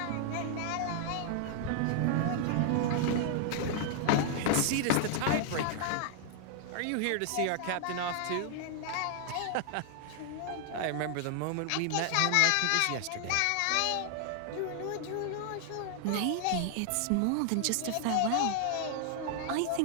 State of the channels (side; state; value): both; different; correlation 0.00